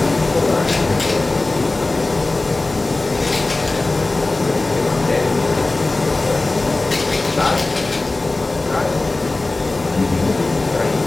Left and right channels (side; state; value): right; quieter; 3.1 dB